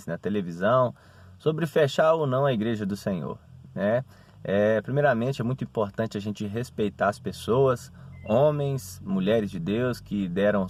na televisão, sobre fechar ou não a igreja do Senhor, né? Primeiramente, é muito importante a gente respeitar as pessoas, homens, mulheres de Deus que deram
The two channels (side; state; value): both; identical; correlation 1.00